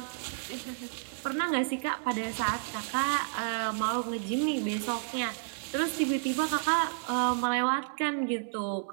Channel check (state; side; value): silent; left; 57 dB below the other